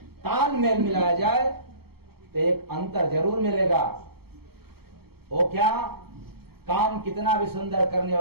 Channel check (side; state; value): left; late; 0.96 ms